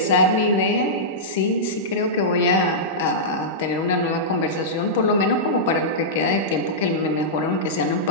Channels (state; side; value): normal; both; correlation -0.13